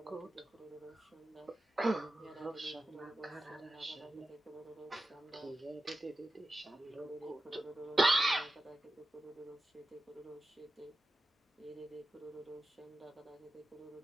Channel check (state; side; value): normal; both; correlation 0.92